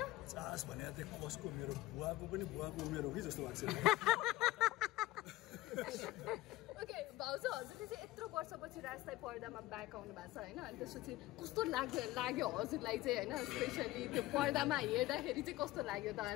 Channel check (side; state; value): right; quieter; 17.6 dB